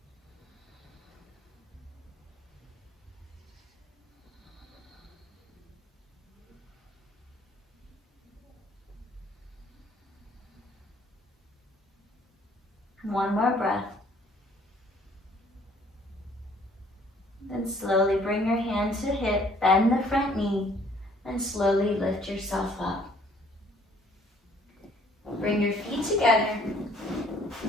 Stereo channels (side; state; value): both; normal; correlation 0.60